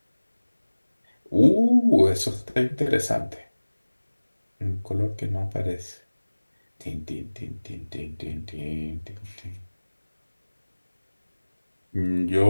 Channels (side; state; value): both; inverted; correlation -1.00